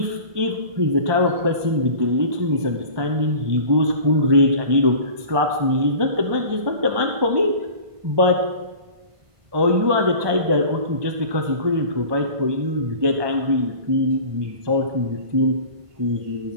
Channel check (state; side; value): late; left; 1.2 ms